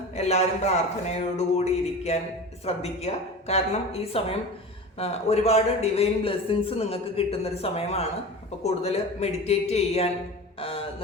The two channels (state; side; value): normal; both; correlation 0.33